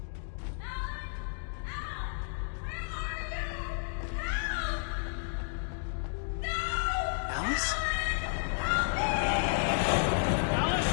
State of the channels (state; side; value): silent; right; digital silence